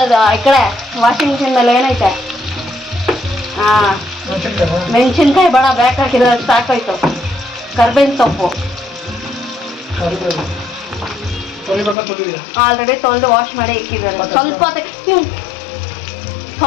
ಈ ಕಡೆ ವಾಷಿಂಗ್ ಮಿಷಿನ್ ಮೇಲೆ ಏನೈತೆ. ಹಾಂ, ಮೆಣಸಿನ್ಕಾಯಿ ಬೇಡ, ಬೇಕಾಕಿದ್ರೆ ಸಾಕಾಯ್ತು. ಕರ್ಬೇವಿನ ಸೊಪ್ಪು ಆಲ್ರೆಡಿ ತೊಳೆದು ವಾಶ್ ಮಾಡಿ ಇಕ್ಕಿದ್ದಾರೆ. ಸ್ವಲ್ಪ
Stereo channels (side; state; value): right; drops out; at 12.0 s